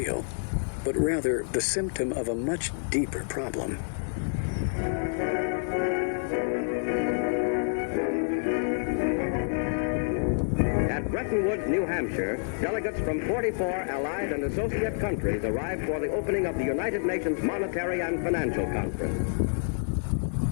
but rather the symptom of a much deeper problem? At Bretton Woods, New Hampshire, delegates from 44 allied and associate countries arrived for the opening of the United Nations Monetary and Financial Conference.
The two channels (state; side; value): silent; right; digital silence